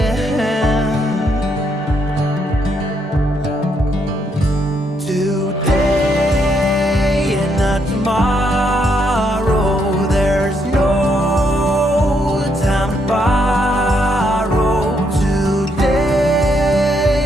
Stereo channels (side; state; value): both; normal; correlation 0.75